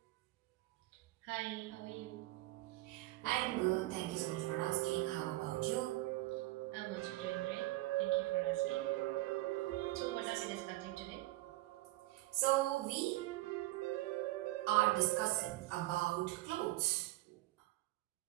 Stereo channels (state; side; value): quieter; left; 18.3 dB